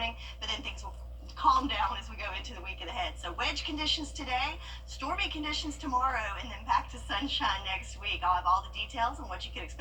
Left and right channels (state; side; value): identical; both; correlation 1.00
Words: but then things will calm down as we go into the weekend ahead. So wedge conditions today, stormy conditions tomorrow, and then back to sunshine next week. I'll have all the details on what you can